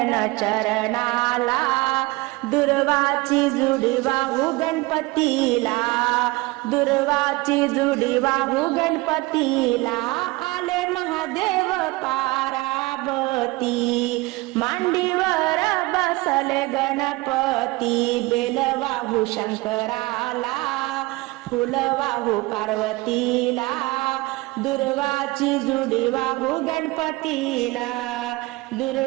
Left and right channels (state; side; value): quieter; left; 22.2 dB